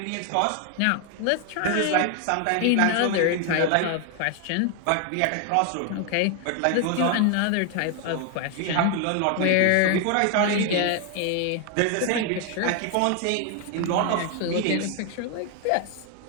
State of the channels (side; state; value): both; different; correlation 0.00